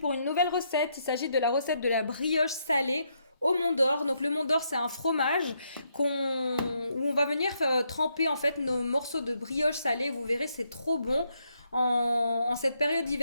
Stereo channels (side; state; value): both; inverted; correlation -0.77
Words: une nouvelle recette. Il s'agit de la recette de la brioche salée au Mont d'Or. Donc le Mont d'Or, c'est un fromage où on va venir tremper en fait nos morceaux de brioche salée. Vous verrez, c'est trop bon. En cette période